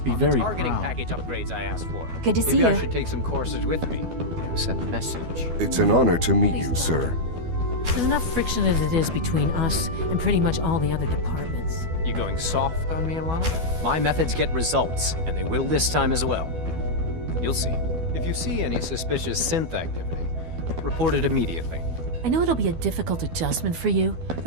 be on the very targeting proud. package upgrades I asked for. Good to see Maybe I you. should take some courses with me. Send a message. It's an honor to meet you, sir. There's enough friction as it is between us and pretty much all the other departments. You going soft on me, Alana? My methods get results, and they will this time as well. You'll see. If you see any suspicious synth activity, report it immediately. I know it'll be a difficult adjustment for you,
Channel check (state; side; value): late; left; 12 ms